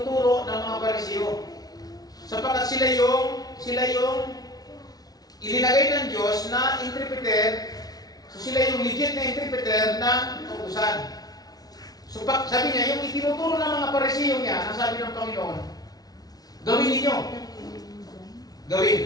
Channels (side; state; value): right; late; 0.19 ms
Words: ng mga Pariseo. Sapagkat sila yung ilinagay ng Diyos na interpreter, so sila yung legit na interpreter ng kautusan. So sabi niya, yung itinuturo ng mga Pariseo niya, ang sabi ng Panginoon, gawin ninyo. Gawin.